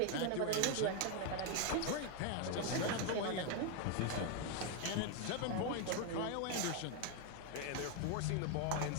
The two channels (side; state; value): both; different; correlation 0.01